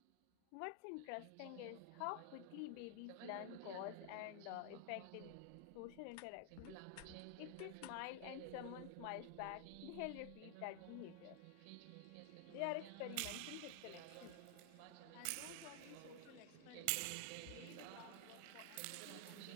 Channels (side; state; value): both; different; correlation 0.00